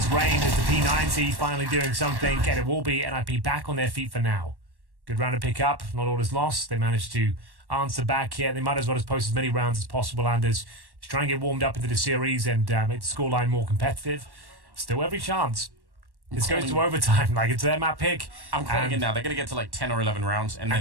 Rain as the P90 finally doing something, and it will be NIP back on their feet for now. Good round to pick up. Not all is lost. They managed to answer back here. They might as well just post as many rounds as possible, Anders, to try and get warmed up into the series and make the scoreline more competitive. Still every chance. This goes to overtime. Like, it's their map pick. I'm calling it now. They're going to get to like 10 or 11 rounds, and then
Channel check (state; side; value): late; left; 1.1 ms